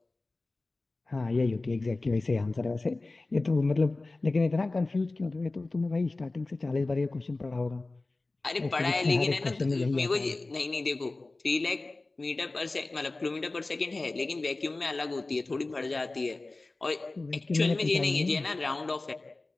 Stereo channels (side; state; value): right; quieter; 3.2 dB